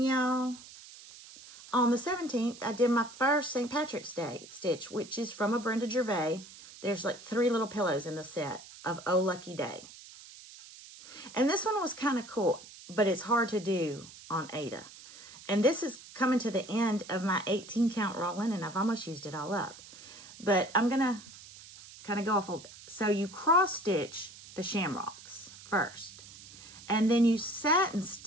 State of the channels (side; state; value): right; noise; hiss, 18 dB below the sound